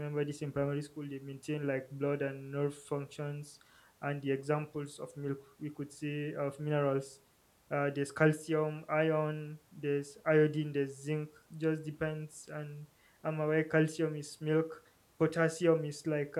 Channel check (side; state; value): both; identical; correlation 1.00